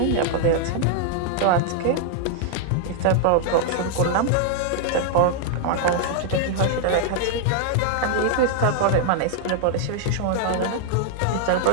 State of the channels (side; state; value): both; different; correlation 0.00